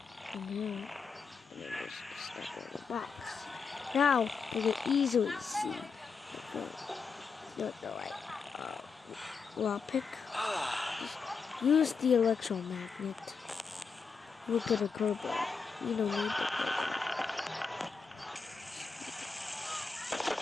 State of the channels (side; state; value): right; quieter; 5.2 dB